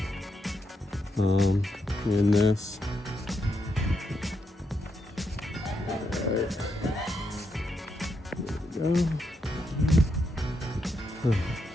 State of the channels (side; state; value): both; normal; correlation 0.82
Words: in this. Alright. There we go.